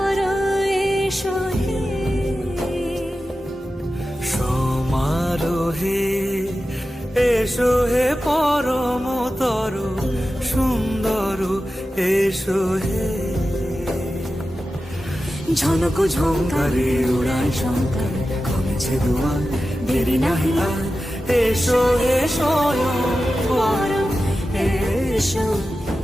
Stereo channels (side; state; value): both; normal; correlation 0.93